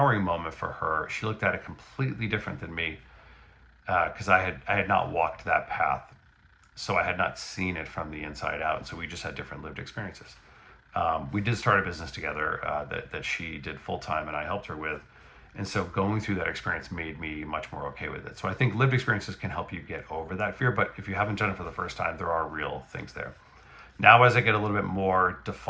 moment for her, she looked at it completely different than me because I had not walked that path. So I had not seen it from the inside out. So we just had different lived experiences. We did start a business together that she did full time and I helped her with. And so going through that experience made me much more okay with it. So I think lived experiences can help you get over that fear. But if you haven't done it for the first time, there are real things there. Now, as I get a little bit more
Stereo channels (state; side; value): identical; both; correlation 1.00